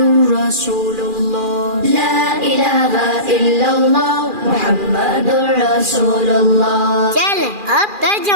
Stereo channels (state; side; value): late; left; 2.4 ms